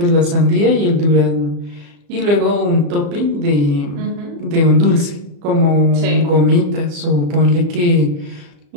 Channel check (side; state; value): left; late; 34 ms